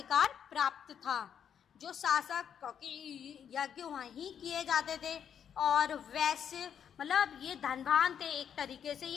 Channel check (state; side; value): quieter; right; 8.4 dB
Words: प्राप्त था। जो शासक, क्योंकि यज्ञ वहीं किए जाते थे, और वैश्य मतलब ये धनवान थे, एक तरीके से